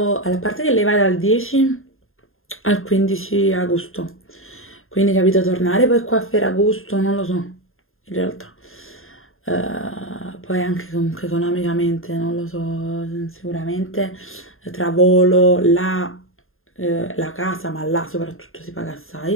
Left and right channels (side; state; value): right; late; 0.61 ms